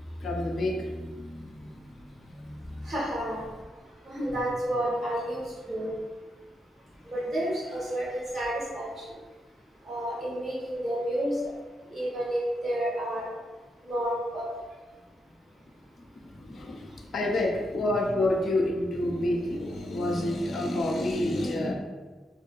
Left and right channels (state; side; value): normal; both; correlation 0.81